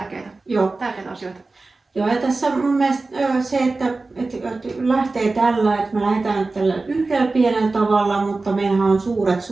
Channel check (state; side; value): quieter; left; 3.5 dB